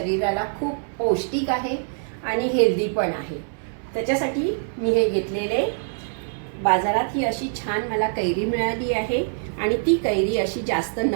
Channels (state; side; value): silent; left; 63 dB below the other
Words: खूप पौष्टिक आहे आणि हेल्दी पण आहे। त्याच्यासाठी मी हे घेतलेले बाजारात ही अशी छान मला कैरी मिळाली आहे आणि ती कैरी अशी जास्त